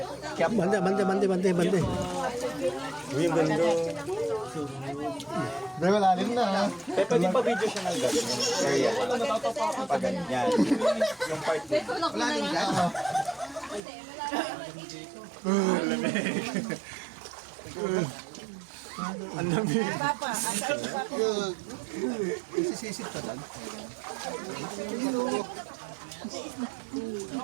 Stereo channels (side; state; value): left; drops out; at 13.8 s